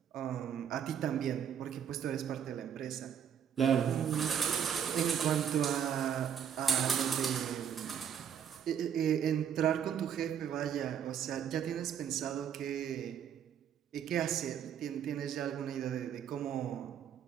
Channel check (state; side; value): quieter; left; 8.6 dB